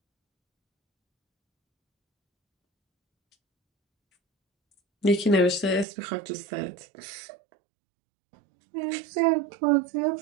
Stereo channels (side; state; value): left; drops out; at 5.9 s